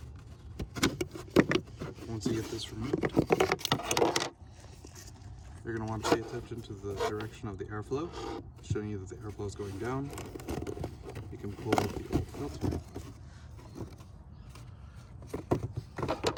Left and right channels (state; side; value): identical; both; correlation 1.00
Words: Once you get this removed, you're going to want to pay attention to the direction of the airflow, showing you that the airflow is going down. You can pull out the old filter.